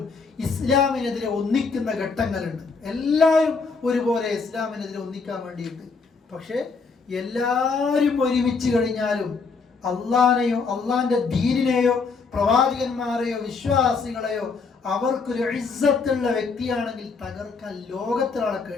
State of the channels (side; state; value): right; quieter; 4.7 dB